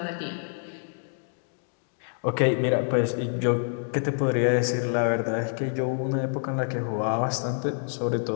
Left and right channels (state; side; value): silent; right; digital silence